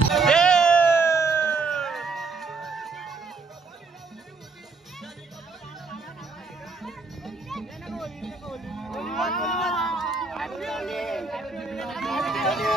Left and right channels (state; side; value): quieter; left; 4.2 dB